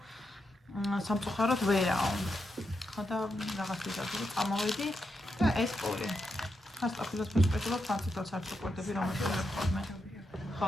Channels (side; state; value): both; normal; correlation 0.85